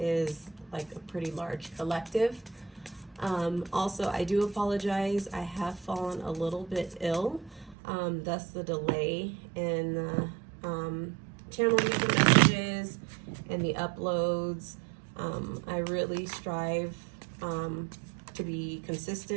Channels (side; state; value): left; drops out; at 7.8 s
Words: like a pretty large collective. Also, I do apologize. I have fallen a little bit ill, thus the delay in the channeling of the messages and the uploads. I really strive to be